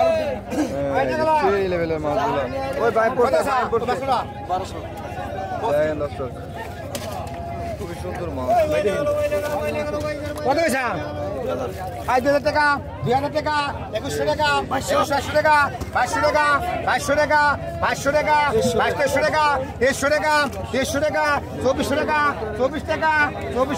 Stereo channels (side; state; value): both; identical; correlation 1.00